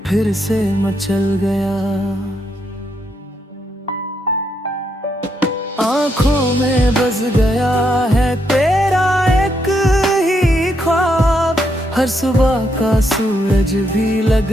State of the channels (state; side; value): normal; both; correlation 0.78